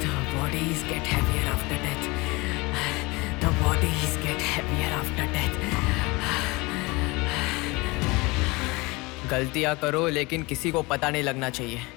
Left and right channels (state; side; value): quieter; right; 24.4 dB